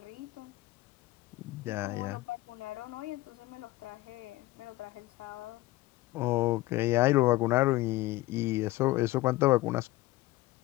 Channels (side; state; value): right; quieter; 18.5 dB